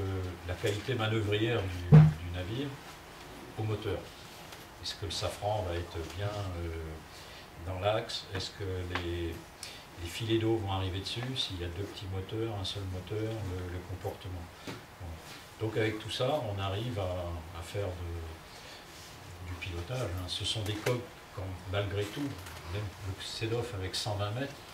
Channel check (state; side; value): identical; both; correlation 1.00